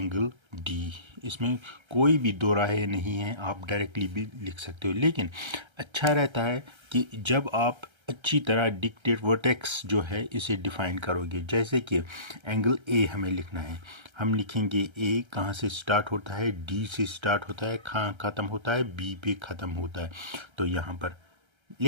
डी। इसमें कोई भी दो राहें नहीं है, आप डायरेक्टली भी लिख सकते हो। लेकिन अच्छा रहता है कि जब आप अच्छी तरह डिक्टेट वर्टेक्स जो है इसे डिफाइन करोगे। जैसे कि एंगल ए हमें लिखना है, हम लिखेंगे ए कहाँ से स्टार्ट होता है, डी से स्टार्ट होता है, कहाँ ख़त्म होता है, बी पे ख़त्म होता है। तो यहाँ पर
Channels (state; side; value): late; left; 1.3 ms